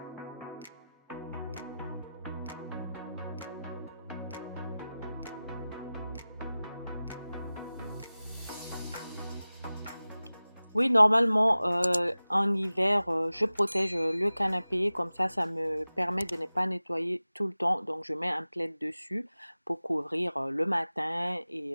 Oui, normalement, en hiver, je protège le canapé, comme ça me permet de ne pas nettoyer tout le temps. Donc, je mets un plaid dessus pour couvrir le matin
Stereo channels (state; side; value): inverted; both; correlation -0.96